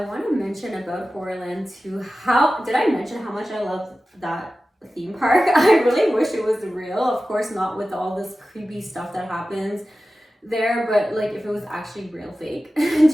want to mention about Horrorland too. Did I mention how much I love that theme park? I really wish it was real. Of course, not with all this creepy stuff that happens there, but like if it was actually real fake.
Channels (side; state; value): both; normal; correlation 0.95